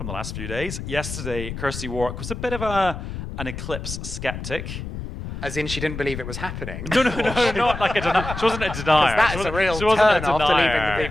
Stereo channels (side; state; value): left; noise; rumble, 8 dB below the sound